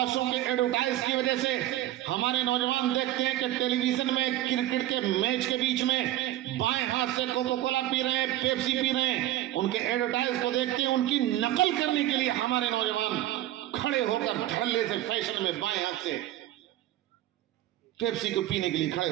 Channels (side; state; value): left; quieter; 14.3 dB